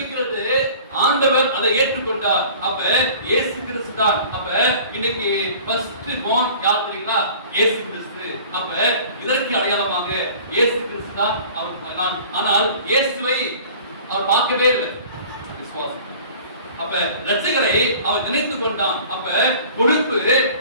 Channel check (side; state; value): both; inverted; correlation -0.45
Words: ஆண்டவர் அதை ஏற்றுக்கொண்டார். அப்ப இயேசு கிறிஸ்து தான். அப்ப இன்னைக்கு ஃபர்ஸ்ட் born யார் தெரியுங்களா? இயேசு கிறிஸ்து. அப்ப இதற்கு அடையாளமாக இயேசு கிறிஸ்து தான் அவர். ஆனால் இயேசுவை அவர் பார்க்கவே இல்லை. விசுவாசம். அப்ப இரட்சகரை அவன் நினைத்து கொண்டான். அப்ப பொறுப்பு